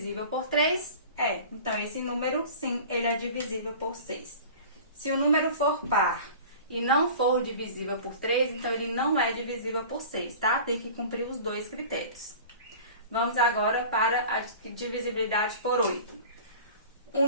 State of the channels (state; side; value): inverted; both; correlation -0.40